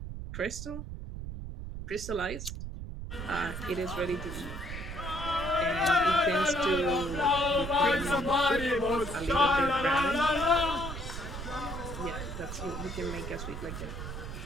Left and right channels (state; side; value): noise; right; rumble, 8 dB below the sound